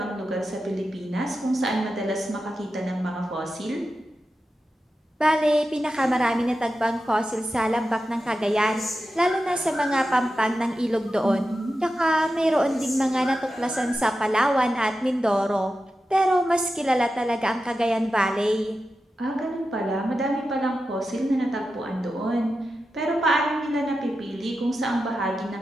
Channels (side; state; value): both; normal; correlation 0.91